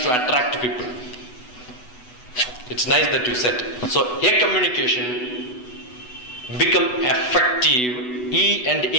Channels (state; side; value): late; right; 8.1 ms